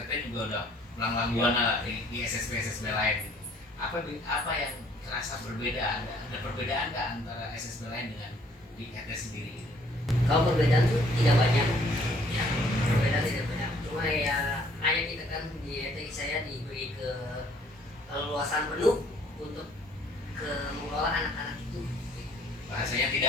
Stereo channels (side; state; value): both; normal; correlation 0.61